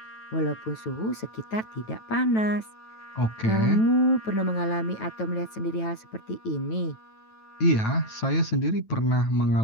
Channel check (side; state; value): right; late; 9.1 ms